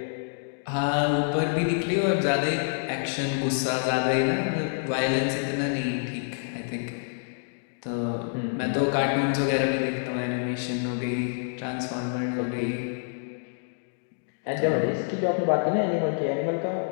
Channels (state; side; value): silent; right; digital silence